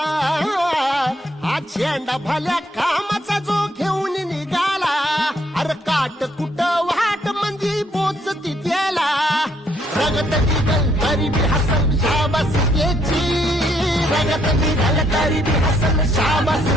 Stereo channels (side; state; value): both; normal; correlation 0.70